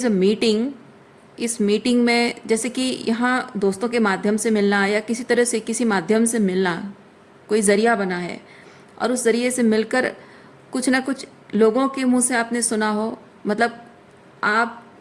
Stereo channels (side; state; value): both; identical; correlation 1.00